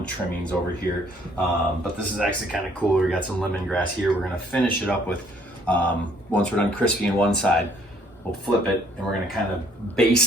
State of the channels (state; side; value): normal; both; correlation 0.63